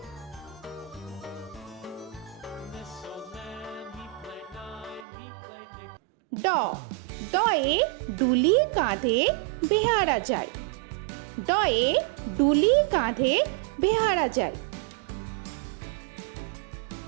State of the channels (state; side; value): drops out; left; at 5.1 s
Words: This old man, he played nine. He played knick. ড, ডয়ে ডুলি কাঁধে বেহারা যায়। ডয়ে ডুলি কাঁধে বেহারা যায়।